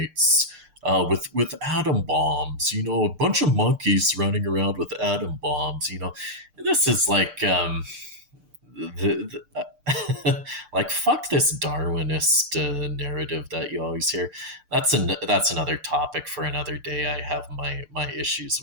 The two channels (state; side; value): late; left; 6.7 ms